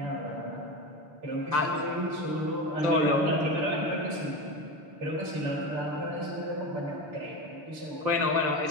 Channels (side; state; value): left; late; 6.6 ms